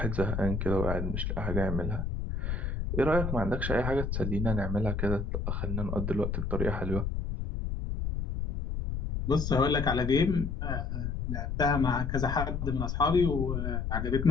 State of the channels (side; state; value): left; noise; rumble, 2 dB below the sound